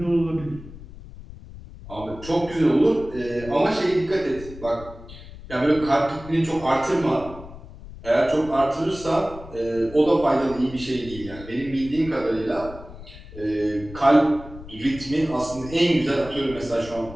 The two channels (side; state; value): left; noise; rumble, 16 dB below the sound